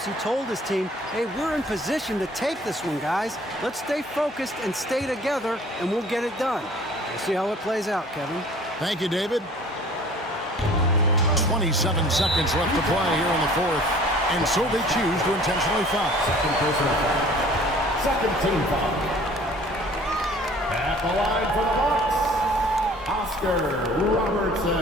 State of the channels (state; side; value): normal; both; correlation 0.50